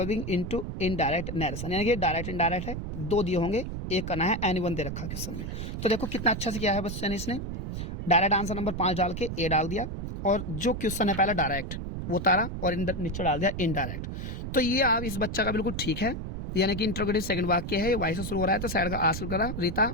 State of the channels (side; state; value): right; noise; rumble, 5 dB below the sound